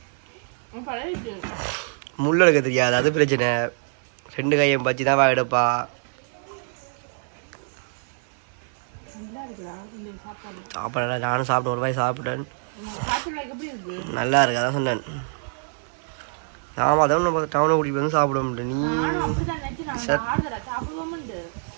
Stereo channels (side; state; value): left; silent; 62 dB below the other